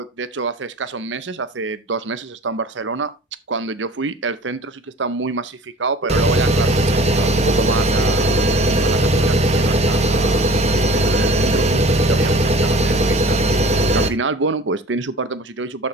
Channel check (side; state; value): both; normal; correlation 0.45